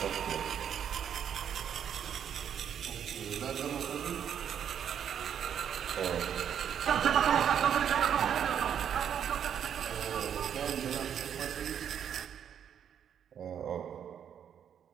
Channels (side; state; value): left; quieter; 8.7 dB